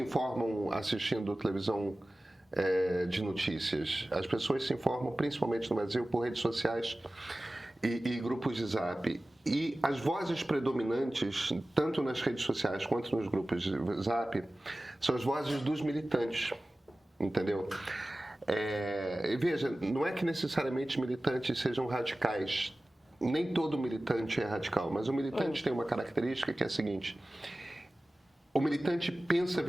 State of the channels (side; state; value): both; normal; correlation 0.97